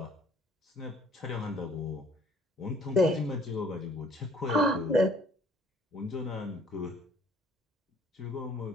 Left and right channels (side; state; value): both; normal; correlation 0.57